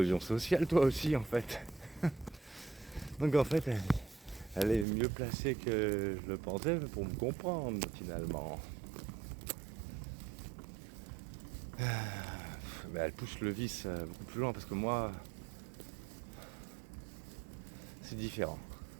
sociale toi aussi en fait. Donc en fait, elle est mieux placée que je le pensais pour me comprendre finalement. Mais elle pousse le vice beaucoup plus loin parce que moi, c'est différent.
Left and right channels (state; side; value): drops out; left; at 4.9 s